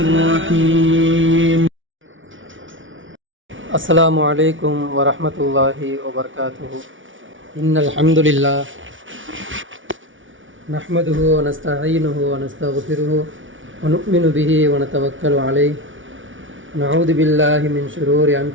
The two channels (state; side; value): late; left; 0.56 ms